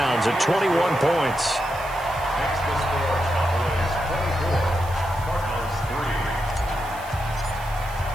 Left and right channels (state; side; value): noise; right; hiss, 19 dB below the sound